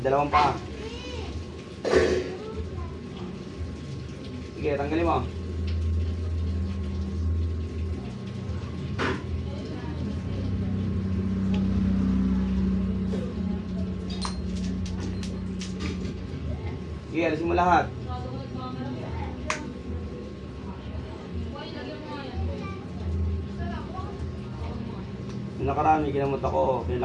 Dalawang paa. Sige, tanggalin mo. Sige, alisin mo lahat. Yung nakarami, ginamot ako,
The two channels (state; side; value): identical; both; correlation 1.00